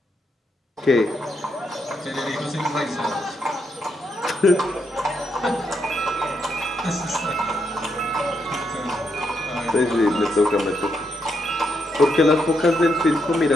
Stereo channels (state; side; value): normal; both; correlation 0.80